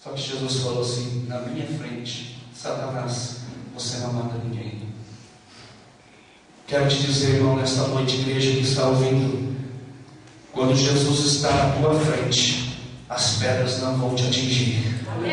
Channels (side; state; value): both; identical; correlation 1.00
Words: Só que Jesus falou assim: na minha frente, Satanás, você não mata ninguém. Quero te dizer, irmão, nesta noite, igreja que está ouvindo, quando Jesus está na tua frente, as pedras não vão te atingir.